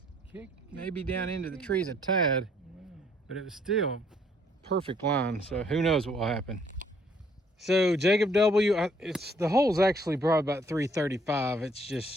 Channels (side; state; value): both; normal; correlation 0.64